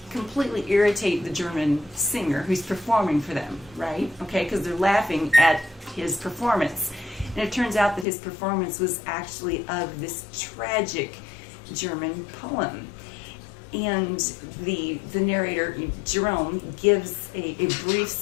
completely irritate the German singer who's performing for them, right? Okay, because they're laughing at his performance. And it turns out that his performance was actually of this tragic German poem. And the narrator, Jerome, gives a brief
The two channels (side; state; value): right; drops out; at 8.1 s